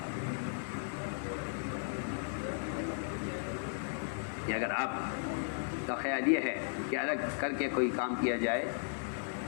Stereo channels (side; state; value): right; silent; digital silence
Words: کہ اگر آپ کا خیال یہ ہے کہ الگ کر کے کوئی کام کیا جائے